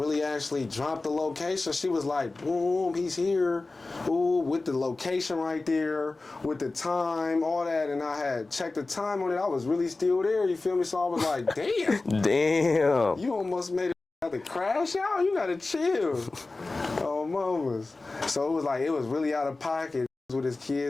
actually dropped the location. She was like, boom, he's here. Ooh, with the location right there, with the time, all that, and I had checked the time on it. I was really still there, you feel me? So I was like, damn. Damn. You almost made it have to crash out. You gotta chill. Oh, mamas. So it was like, it was really out of pocket with his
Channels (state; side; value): quieter; right; 3.4 dB